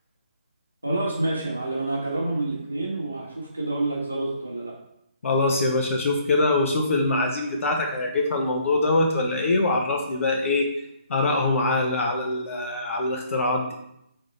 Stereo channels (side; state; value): both; inverted; correlation -0.62